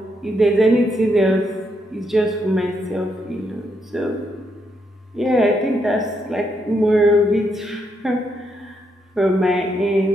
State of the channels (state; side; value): normal; both; correlation 0.78